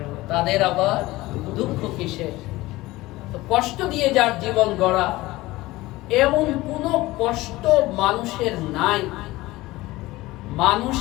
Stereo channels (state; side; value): quieter; right; 18.8 dB